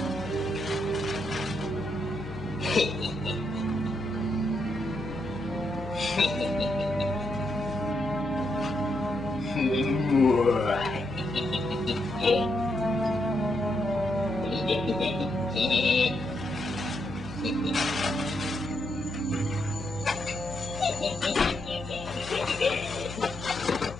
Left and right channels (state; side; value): noise; left; hum, 13 dB below the sound